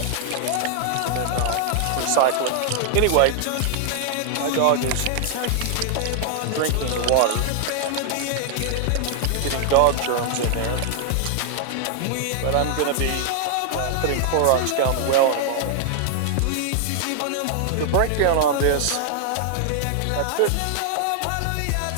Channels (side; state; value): both; different; correlation 0.00